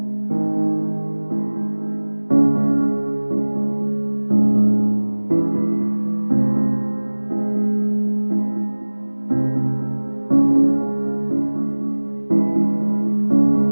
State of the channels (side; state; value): both; inverted; correlation -1.00